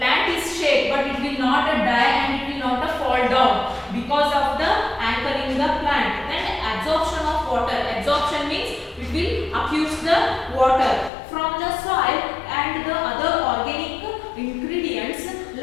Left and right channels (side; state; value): right; drops out; at 11.1 s